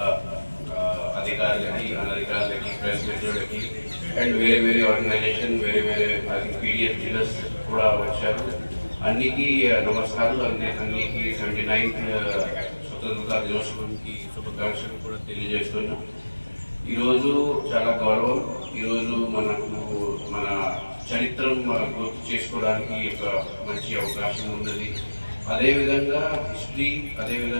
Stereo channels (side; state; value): both; inverted; correlation -1.00